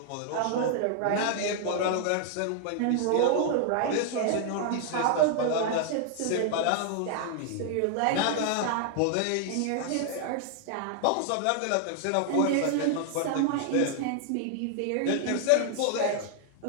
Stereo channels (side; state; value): both; different; correlation 0.00